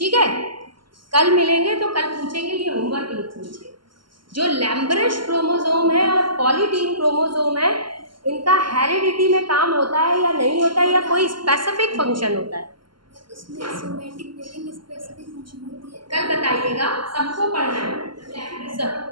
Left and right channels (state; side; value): late; left; 0.72 ms